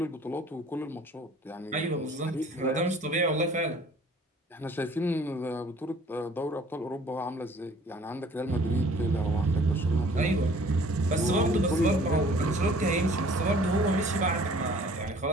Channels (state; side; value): normal; both; correlation 0.53